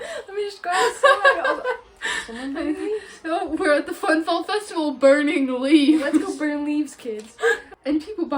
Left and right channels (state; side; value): identical; both; correlation 1.00